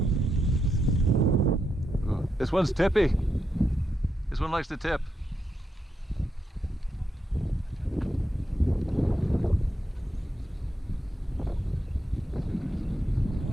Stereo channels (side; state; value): both; normal; correlation 0.83